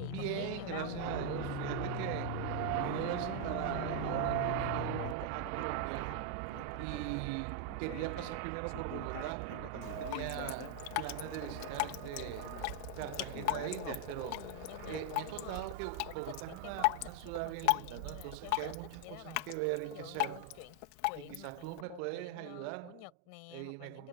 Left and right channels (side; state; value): both; different; correlation 0.00